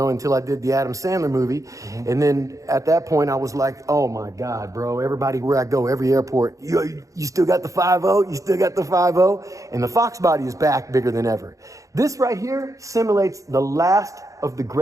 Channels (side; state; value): left; late; 0.16 ms